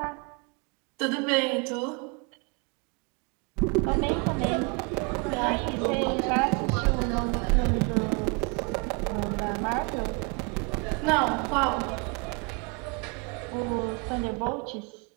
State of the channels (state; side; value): quieter; left; 30.6 dB